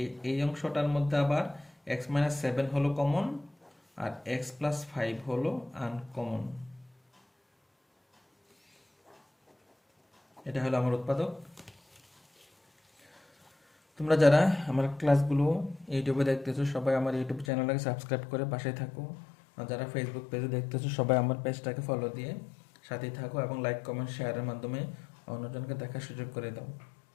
এই অংশটার মধ্যে আবার এক্স মাইনাস 7 হলো কমন, আর এক্স প্লাস 5 হলো আনকমন। এটা হলো আমার উৎপাদক। তোমরা যারা আমার ক্লাসগুলো ইউটিউবে দেখতেছো সবাই আমার ইউটিউব চ্যানেলটাকে সাবস্ক্রাইব করে পাশে থাকো, আর যারা ফেসবুক পেজে দেখতেছো সবাই আমার পেজটাকে ফলো দিয়ে সাথেই থাকো এবং লাইক কমেন্ট শেয়ারের মাধ্যমে অন্যজনকে দেখার সুযোগ করে দাও।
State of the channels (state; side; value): drops out; right; at 17.4 s